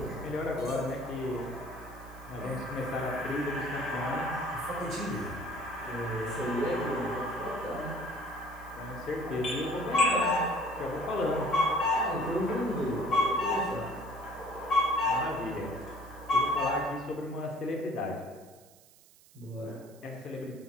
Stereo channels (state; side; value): noise; right; hiss, 26 dB below the sound